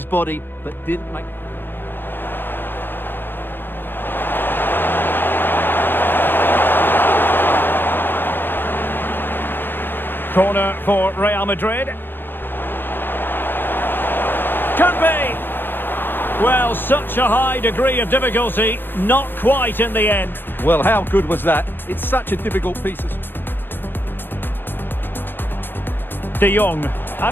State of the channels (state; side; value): late; right; 0.098 ms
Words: body, but didn't make... Corner for Real Madrid. Could be. Well, such a high degree of difficulty, not quite in the end. Well, how good was that? It's such a difficult piece of... De Jong,